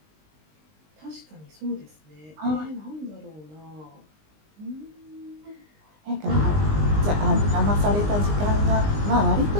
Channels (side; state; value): left; late; 20 ms